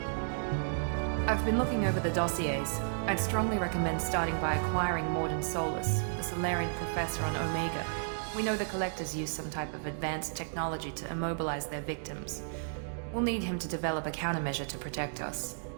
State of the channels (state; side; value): silent; left; digital silence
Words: I've been looking over the dossiers. I'd strongly recommend starting by acquiring Morden Solus, the Solarian professor on Omega. We know the Collectors use some type of advanced technology to immobilize their victims. We'll need him to develop a countermeasure to protect us.